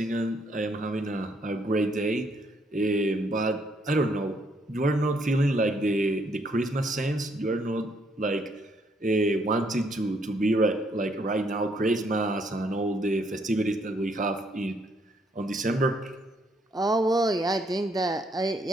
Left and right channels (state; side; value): normal; both; correlation 0.71